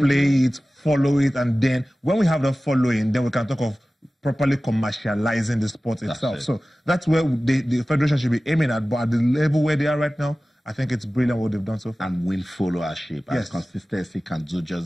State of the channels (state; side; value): normal; both; correlation 0.97